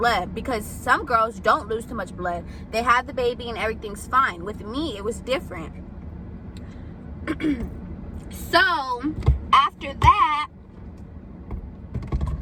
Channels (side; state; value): both; identical; correlation 1.00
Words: because some girls don't lose too much blood. They have the baby and everything's fine. With me, it was different. So after that,